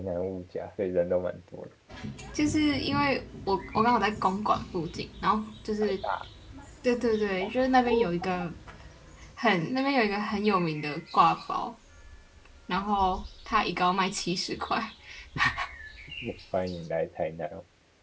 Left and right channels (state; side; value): identical; both; correlation 1.00